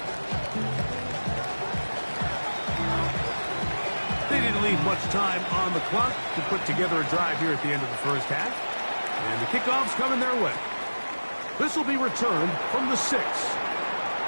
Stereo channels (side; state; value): both; inverted; correlation -1.00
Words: They didn't leave much time on the clock to put together a drive here at the end of the first half. And the kickoff's coming their way. This will be returned from the 6.